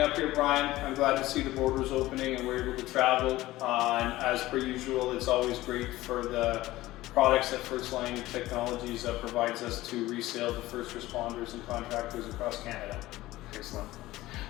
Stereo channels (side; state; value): right; quieter; 17.2 dB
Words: up here, Brian. I'm glad to see the borders opening and we're able to travel. And as per usual, it's always great for the products that First Line Technologies provides us to resale to first responders and contractors across Canada. Excellent.